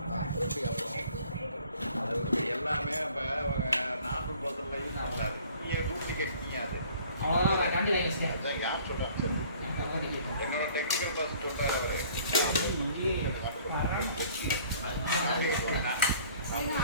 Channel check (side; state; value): both; inverted; correlation -0.53